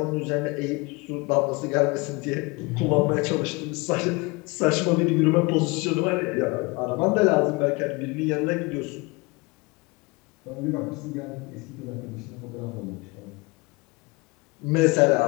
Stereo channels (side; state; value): right; quieter; 26.1 dB